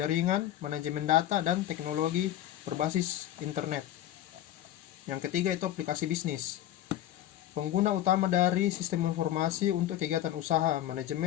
manajemen data, dan teknologi berbasis internet. Yang ketiga itu aplikasi bisnis. Pengguna utama dari sistem informasi untuk kegiatan usaha,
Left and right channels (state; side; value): quieter; right; 12.6 dB